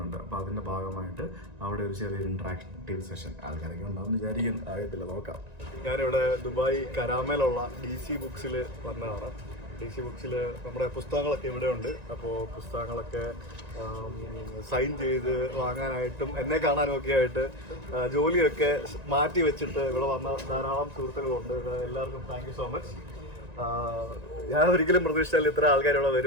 അപ്പോൾ അതിൻ്റെ ഭാഗമായിട്ട് അവിടെ ഒരു ചെറിയൊരു ഇൻട്രാക്റ്റീവ് സെഷൻ ആൾക്കാരൊക്കെ ഉണ്ടാവും വിചാരിക്കാൻ ആകത്തില്ല, നോക്കാം. ഞാനിവിടെ ദുബായ് കരാമയിലുള്ള DC ബുക്സിൽ വന്നതാണ്. DC ബുക്സിൽ നമ്മുടെ പുസ്തകങ്ങളൊക്കെ ഇവിടെ ഉണ്ട്. അപ്പോൾ പുസ്തകങ്ങളൊക്കെ സൈൻ ചെയ്ത് വാങ്ങാനായിട്ടും എന്നെ കാണാനും ഒക്കെ ആയിട്ട് ജോലിയൊക്കെ മാറ്റി വെച്ചിട്ട് ഇവിടെ വന്ന ധാരാളം സുഹൃത്തുക്കളുണ്ട്. എല്ലാവർക്കും താങ്ക് യു സോ മച്ച്. ഞാൻ ഒരിക്കലും പ്രതീക്ഷിച്ചാൽ ഇത്ര ആൾക്കാർ ഇവിടെ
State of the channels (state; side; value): late; left; 1.9 ms